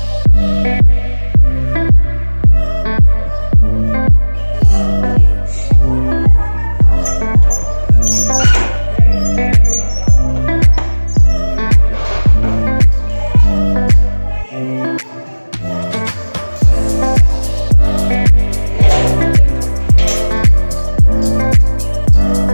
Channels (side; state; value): both; inverted; correlation -1.00